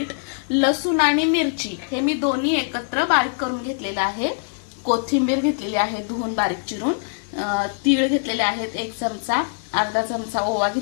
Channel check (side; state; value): right; silent; 64 dB below the other